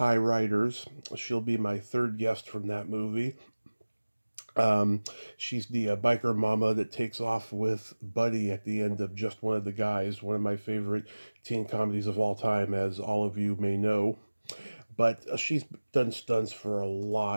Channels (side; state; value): both; inverted; correlation -1.00